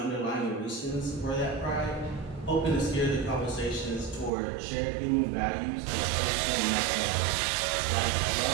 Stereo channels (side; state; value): left; drops out; at 4.3 s